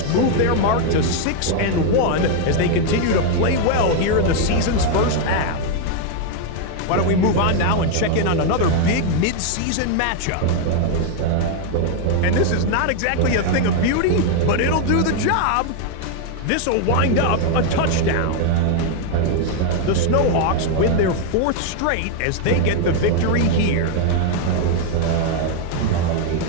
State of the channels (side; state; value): both; different; correlation 0.00